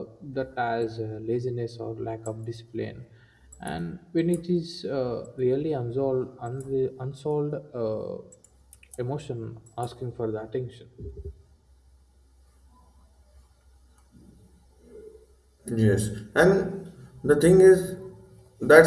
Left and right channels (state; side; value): identical; both; correlation 1.00